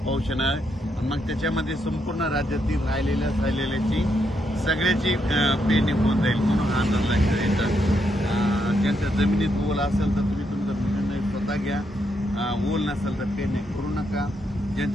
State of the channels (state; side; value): normal; both; correlation 0.79